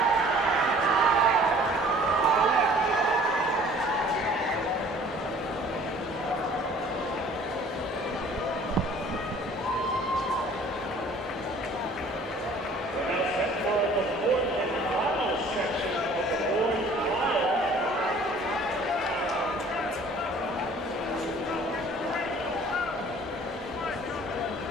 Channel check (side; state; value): both; normal; correlation 0.52